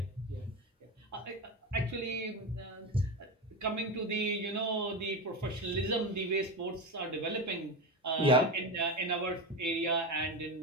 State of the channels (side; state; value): both; normal; correlation 0.19